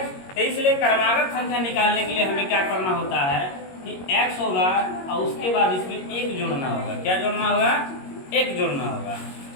तो इसलिए क्रमागत संख्या निकालने के लिए हमें क्या करना होता है कि x होगा और उसके बाद इसमें 1 जोड़ना होगा। क्या जोड़ना होगा? 1 जोड़ना होगा।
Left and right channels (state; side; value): late; right; 22 ms